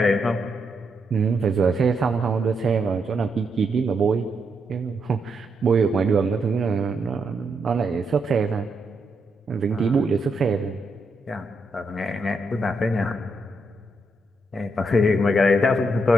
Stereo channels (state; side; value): normal; both; correlation 0.80